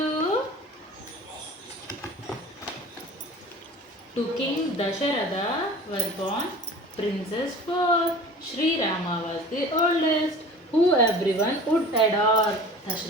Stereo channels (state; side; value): normal; both; correlation 0.41